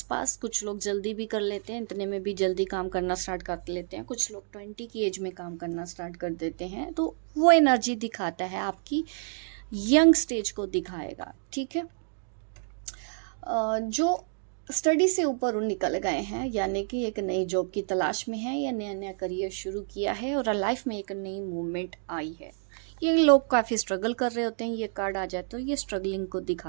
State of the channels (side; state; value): left; silent; digital silence